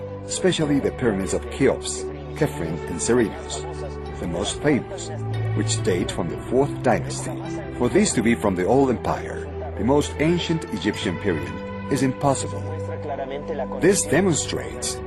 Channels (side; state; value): both; identical; correlation 1.00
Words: especially the pyramids of Cheops, Khephren, and Ceridius, the most famous, which date from the 4th dynasty. For these to be from the old empire, the most ancient Egyptian period, is impossible. This demonstrates